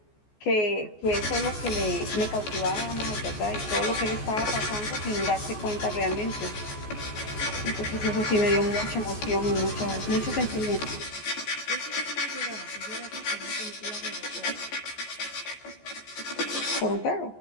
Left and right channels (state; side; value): late; right; 14 ms